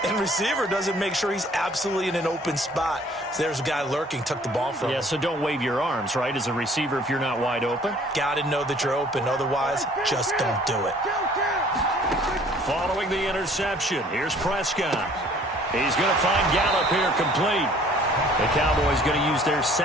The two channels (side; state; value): both; normal; correlation 0.55